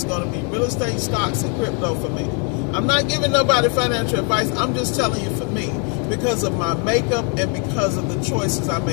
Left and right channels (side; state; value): right; quieter; 38.5 dB